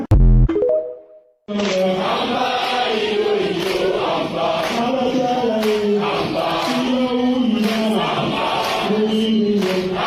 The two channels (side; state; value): both; identical; correlation 1.00